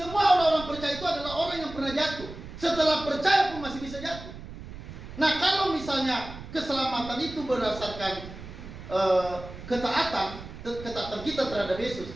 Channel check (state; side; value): noise; right; rumble, 13 dB below the sound